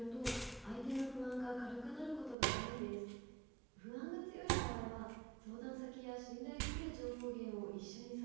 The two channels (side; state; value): left; drops out; at 2.4 s